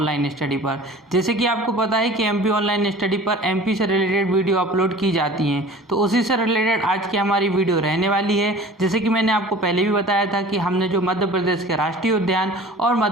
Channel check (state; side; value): normal; both; correlation 0.43